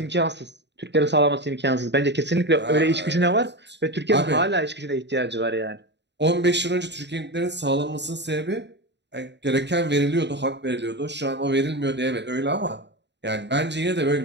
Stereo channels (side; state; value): left; late; 0.51 ms